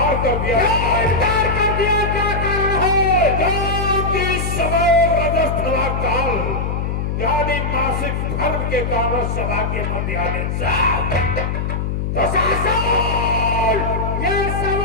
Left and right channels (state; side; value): noise; left; hum, 1 dB below the sound